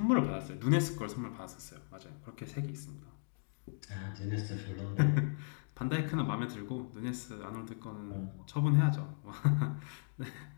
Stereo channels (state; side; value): silent; right; digital silence